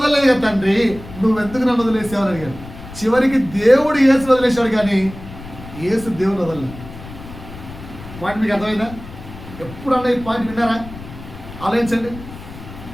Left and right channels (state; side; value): noise; left; rumble, 15 dB below the sound